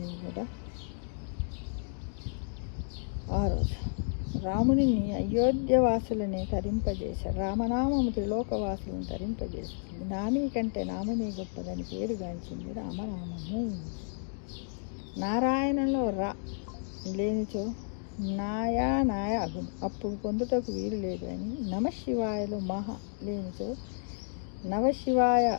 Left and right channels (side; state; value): right; silent; digital silence